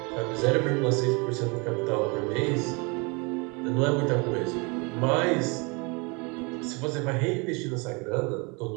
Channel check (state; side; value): quieter; left; 29.8 dB